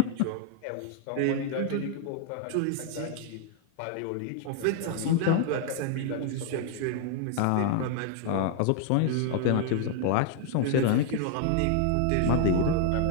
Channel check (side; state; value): both; different; correlation 0.00